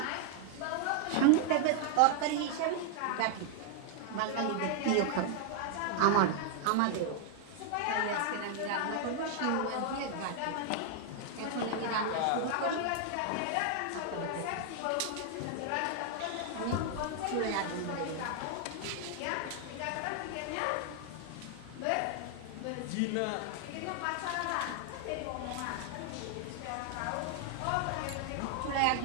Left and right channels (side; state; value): both; different; correlation 0.00